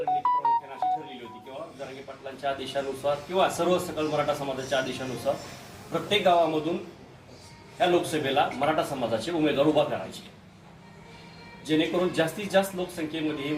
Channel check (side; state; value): both; identical; correlation 1.00